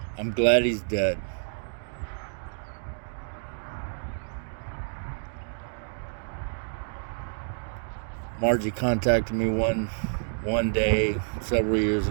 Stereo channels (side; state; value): left; silent; digital silence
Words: I'm glad he's dead. Margie contacted me one day several years